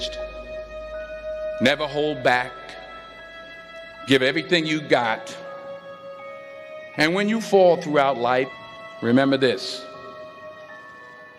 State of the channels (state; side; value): identical; both; correlation 1.00